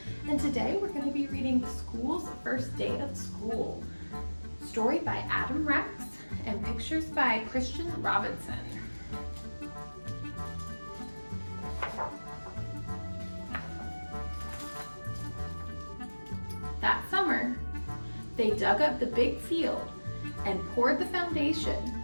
and today we're going to be reading School's First Day of School. Story by Adam Rex and pictures by Christian Robinson. That summer, they dug up the big field and poured the foundation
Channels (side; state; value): both; inverted; correlation -1.00